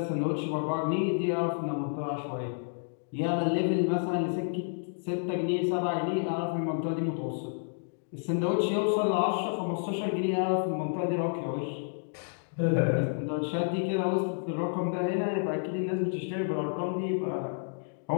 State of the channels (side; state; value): right; silent; digital silence